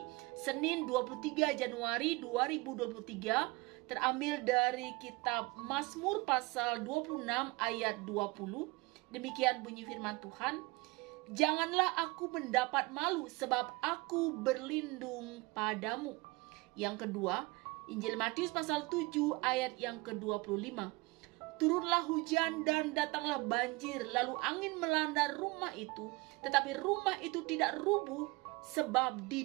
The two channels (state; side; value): quieter; left; 24.6 dB